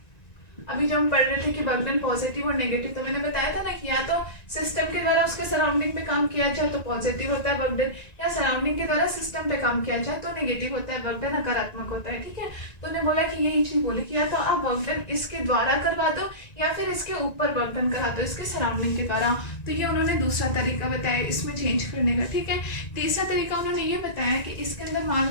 अभी जो हम पढ़ रहे थे कि वर्क डन पॉजिटिव और नेगेटिव, तो मैंने बताया था ना कि या तो सिस्टम के द्वारा उसके सराउंडिंग पे काम किया जाए तो पॉजिटिव होता है वर्क डन, या सराउंडिंग के द्वारा सिस्टम पे काम किया जाए तो नेगेटिव होता है वर्क डन, नकारात्मक होता है, ठीक है। तो उन्होंने बोला कि यही चीज बोली कि या तो आप वर्क डन इसके द्वारा करवा दो या फिर इसके ऊपर वर्क डन करा दो, इसके सराउंडिंग के द्वारा। तो ये उन्होंने दूसरा तरीका बताया इसमें चेंज करने का, ठीक है। तीसरा तरीका उन्होंने ये बताया कि इसके अंदर मान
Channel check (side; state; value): right; late; 1.9 ms